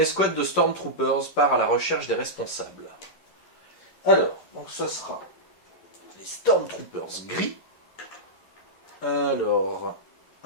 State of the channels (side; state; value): right; late; 11 ms